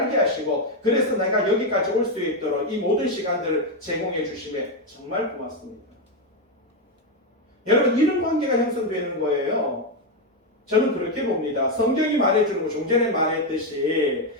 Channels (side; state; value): both; normal; correlation 0.06